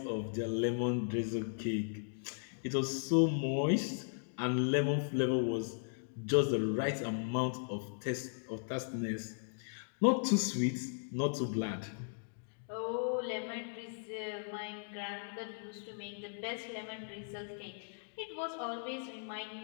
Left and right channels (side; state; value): right; silent; digital silence